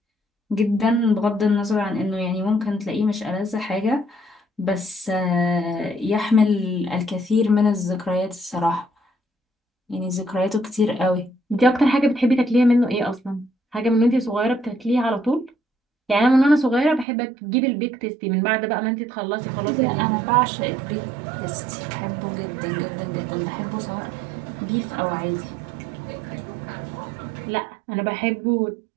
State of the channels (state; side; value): drops out; left; at 17.1 s